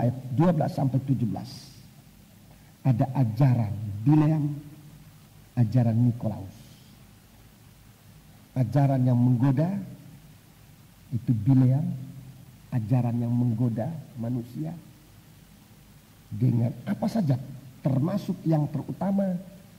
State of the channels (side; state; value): both; identical; correlation 1.00